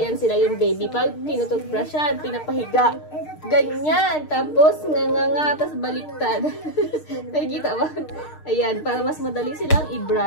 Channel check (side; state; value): right; late; 6.5 ms